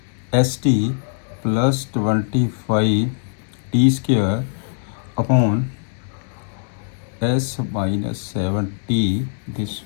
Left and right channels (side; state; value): right; silent; 65 dB below the other